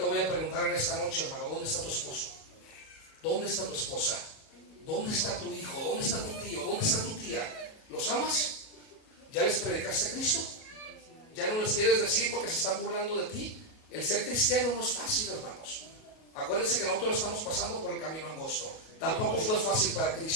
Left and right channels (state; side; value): late; right; 37 ms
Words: voy a preguntar en esta noche, hermano, ¿dónde está tu esposo? ¿Dónde está tu esposa? ¿Dónde está tu hijo? ¿Dónde está tu tío? ¿Dónde está tu tía? ¿Los amas? ¿Ya les predicaste a Cristo? ¿Ya no les quieres decir porque se están burlando de ti? El ser cristiano no es fácil, hermanos. Acuérdense que nosotros estamos pasando por el camino angosto. Tampoco fue fácil para